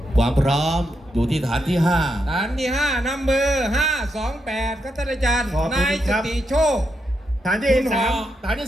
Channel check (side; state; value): both; normal; correlation 0.83